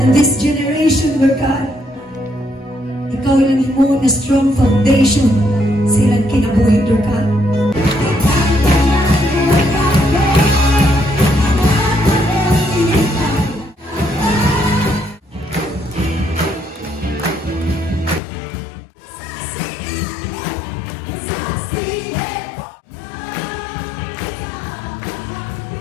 this generation, Lord God, ikaw lang mo na strong foundation silang kinabuhi, Lord God.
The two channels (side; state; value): right; drops out; at 18.2 s